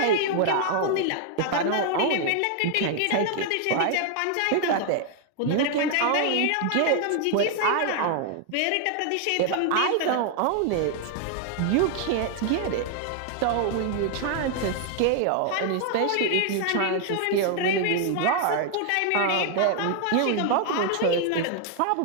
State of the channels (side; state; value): both; different; correlation 0.00